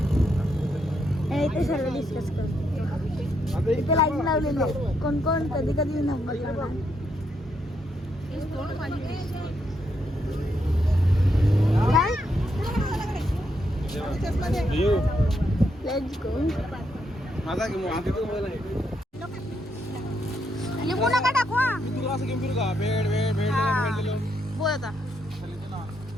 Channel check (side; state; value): both; normal; correlation 0.78